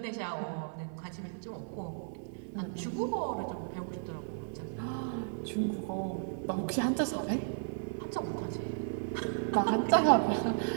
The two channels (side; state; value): left; silent; digital silence